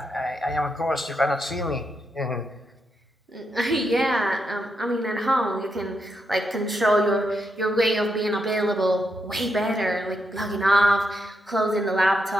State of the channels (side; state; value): both; normal; correlation 0.82